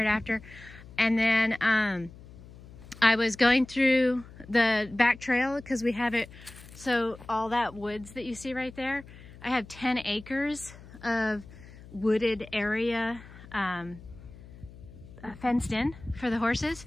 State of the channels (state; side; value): noise; left; hum, 18 dB below the sound